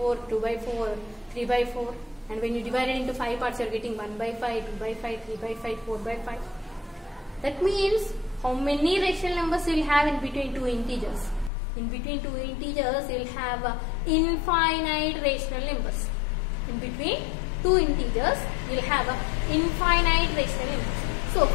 2 by 4, 3 by 4. And when you divide it into 5 parts, you are getting 1 by 5, 2 by 5, 3 by 5, 4 by 5. That means how many rational numbers you will have in between two integers? In between two integers, you will have infinite rational numbers. In between two integers, you will have infinite rational numbers. So,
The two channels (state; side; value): drops out; right; at 11.5 s